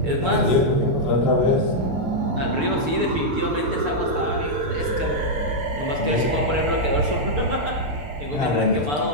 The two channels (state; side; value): late; left; 6.8 ms